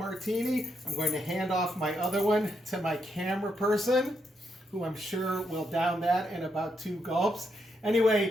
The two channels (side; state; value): both; normal; correlation 0.80